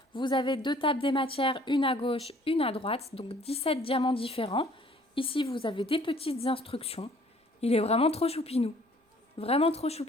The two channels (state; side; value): normal; both; correlation 0.57